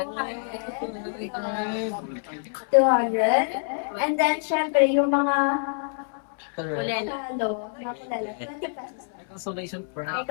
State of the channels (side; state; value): right; silent; 61 dB below the other